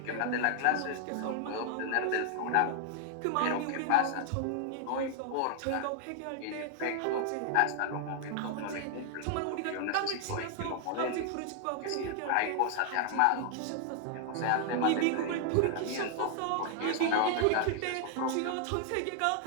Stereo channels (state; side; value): different; both; correlation 0.00